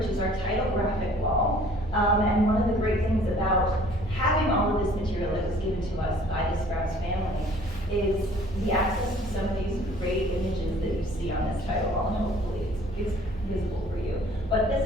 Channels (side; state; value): both; normal; correlation 0.54